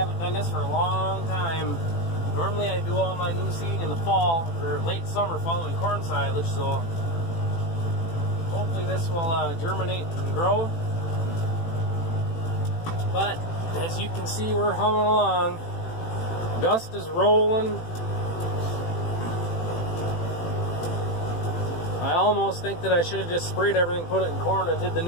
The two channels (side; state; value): right; late; 18 ms